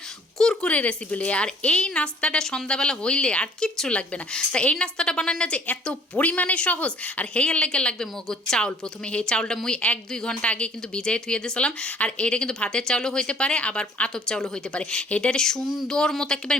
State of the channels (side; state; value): both; normal; correlation 0.56